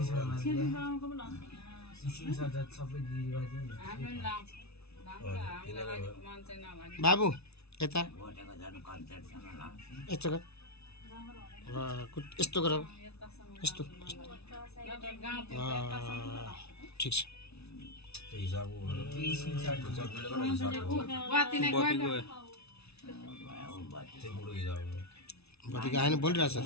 बाबु यता यस्तो गर यस्तो ठिक छ बत्ती गाएन बोलिरहेछ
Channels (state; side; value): late; right; 0.80 ms